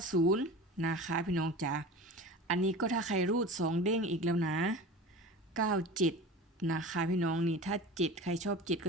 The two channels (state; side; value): normal; both; correlation 0.35